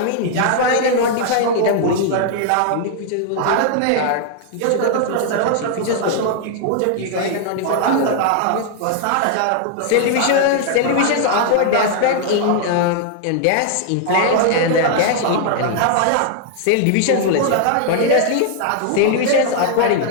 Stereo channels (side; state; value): both; different; correlation 0.00